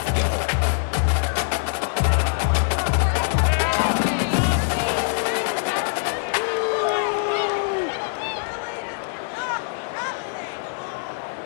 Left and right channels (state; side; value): silent; right; digital silence